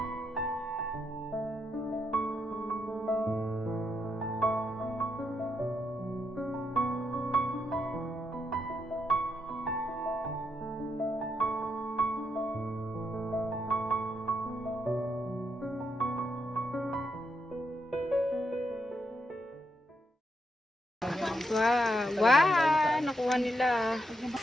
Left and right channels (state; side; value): normal; both; correlation 0.81